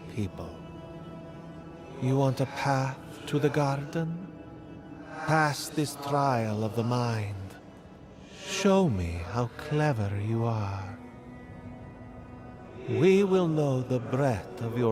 people. You want a path to the garden? Pass this trial of the mind. Show me how clever you are. We will know the breadth of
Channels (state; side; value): identical; both; correlation 1.00